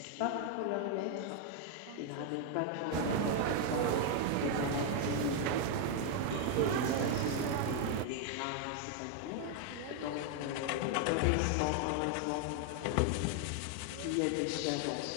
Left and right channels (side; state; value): both; different; correlation 0.00